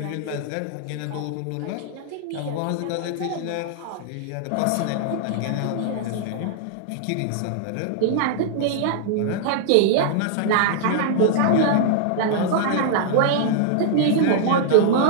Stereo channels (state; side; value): different; both; correlation -0.01